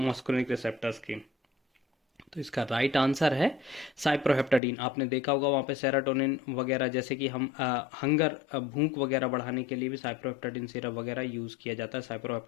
मस्करिनिक रिसेप्टर्स की? तो इसका राइट आंसर है साइप्रोहेप्टाडीन। आपने देखा होगा वहाँ पे सेरोटोनिन वगैरह, जैसे कि हम हंगर भूख वगैरह बढ़ाने के लिए भी साइप्रोहेप्टाडीन सिरप वगैरह यूज़ किया जाता है,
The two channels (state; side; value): drops out; right; at 4.6 s